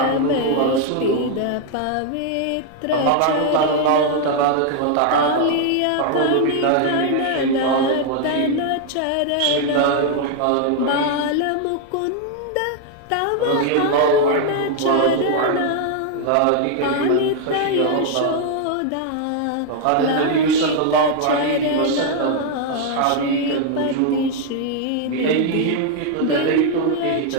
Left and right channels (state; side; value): different; both; correlation 0.00